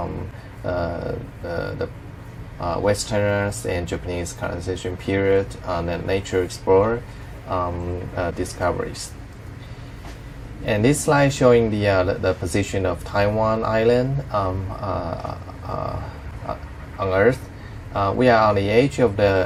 the Westerners and Japanese colonization period, the nature explorer discoveries. And this slide showing the position of Taiwan Island on Earth. We are on the edge of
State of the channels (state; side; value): identical; both; correlation 1.00